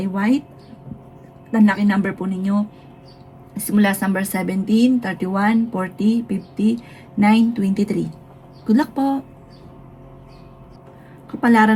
white. Ang lucky number po ninyo simula sa number 17, 31, 40, 50, 9, 23. Good luck po! Kapalaran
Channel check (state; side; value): identical; both; correlation 1.00